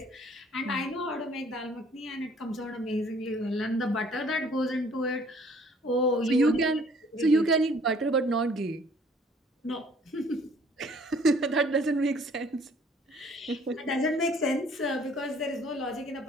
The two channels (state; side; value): normal; both; correlation 0.57